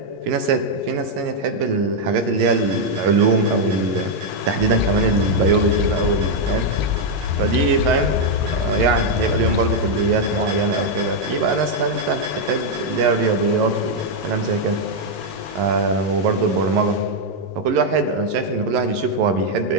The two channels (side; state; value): left; late; 11 ms